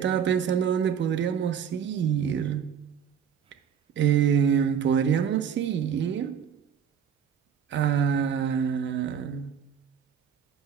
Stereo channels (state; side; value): quieter; left; 7.8 dB